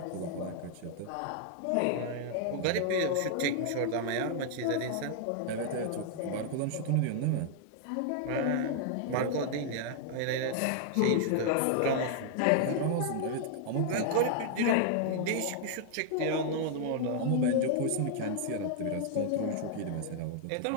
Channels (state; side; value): different; both; correlation 0.00